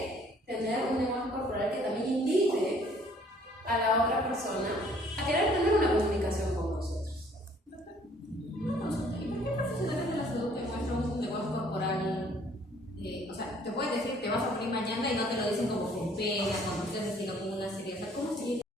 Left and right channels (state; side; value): normal; both; correlation 0.59